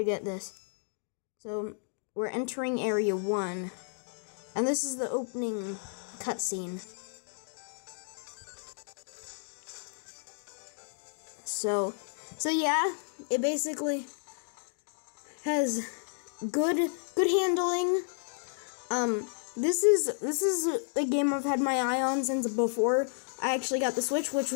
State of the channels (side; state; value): right; silent; digital silence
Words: get this. So, we're entering Area 1, and this is the opening cutscene. So yeah, it basically has good handling. This is a game I've had my eye on since before I actually got the Switch, which